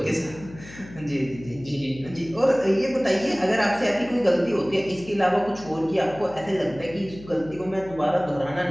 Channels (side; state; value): left; noise; hum, 17 dB below the sound